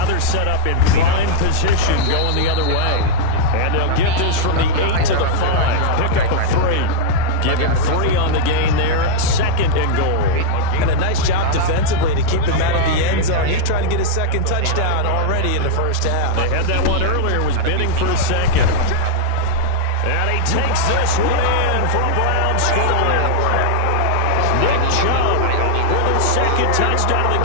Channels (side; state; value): both; different; correlation -0.01